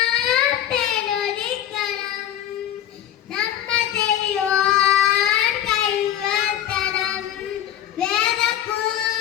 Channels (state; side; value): quieter; right; 11.1 dB